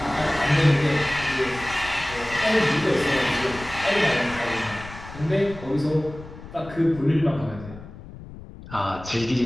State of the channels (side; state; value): left; noise; rumble, 15 dB below the sound